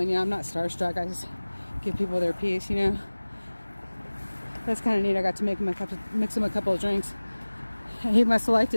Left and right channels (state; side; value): inverted; both; correlation -1.00